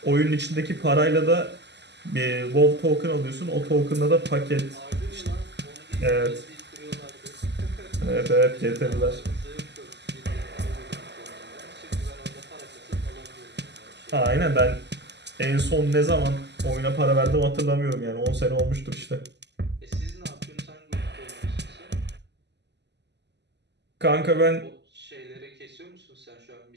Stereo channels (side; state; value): left; late; 0.50 ms